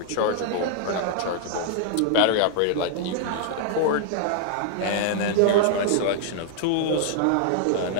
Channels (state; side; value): different; both; correlation 0.00